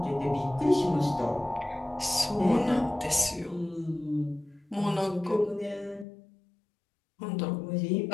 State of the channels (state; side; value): drops out; right; at 6.1 s